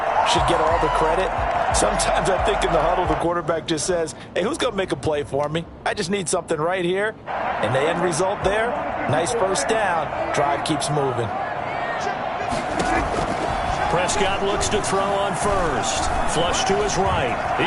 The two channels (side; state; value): both; identical; correlation 1.00